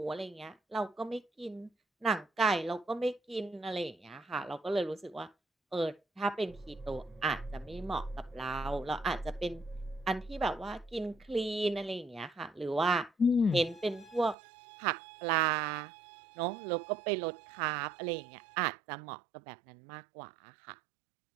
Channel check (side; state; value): left; drops out; at 14.4 s